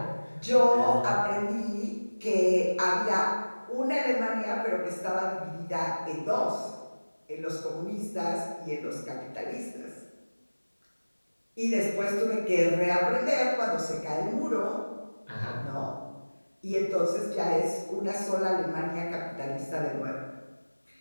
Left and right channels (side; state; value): both; inverted; correlation -1.00